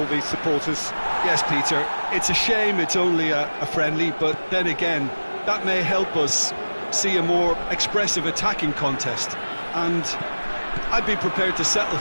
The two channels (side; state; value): both; inverted; correlation -1.00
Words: these supporters. Yes, Peter, it's a shame it's only a friendly, but then again, that may help us see a more expressive attacking contest. And I'd be prepared to settle